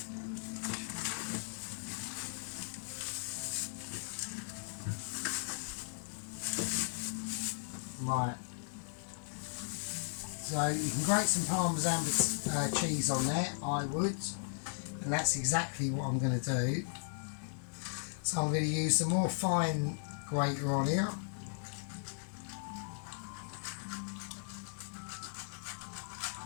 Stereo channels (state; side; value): silent; right; digital silence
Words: Right. So you can grate some Parmesan cheese on there, I would, and that's exactly what I'm going to do. So I'm going to use the more fine grater on here.